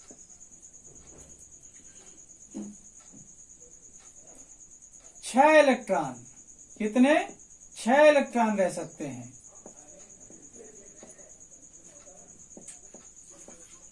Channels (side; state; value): both; identical; correlation 1.00